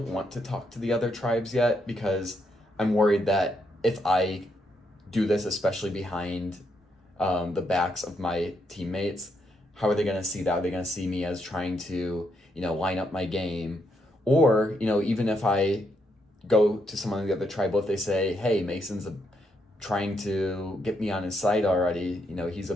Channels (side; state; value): both; normal; correlation 0.77